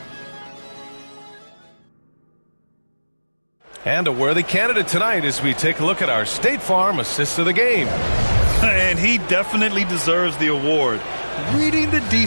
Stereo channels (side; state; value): both; inverted; correlation -1.00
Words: And a worthy candidate tonight as we take a look at our State Farm Assist of the Game. And he definitely deserves the award. Reading the